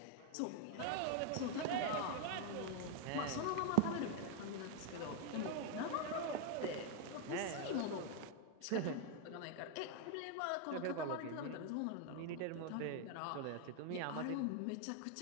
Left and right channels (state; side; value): different; both; correlation 0.00